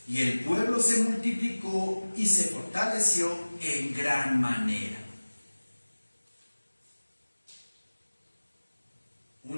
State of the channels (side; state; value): both; inverted; correlation -1.00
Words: y el pueblo se multiplicó y se fortaleció en gran manera.